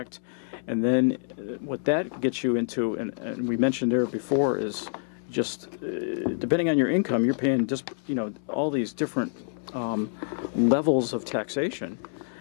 and then what that gets you into, and we mentioned there before, is just depending on your income, you're paying just all these different levels of taxation.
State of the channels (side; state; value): right; silent; 60 dB below the other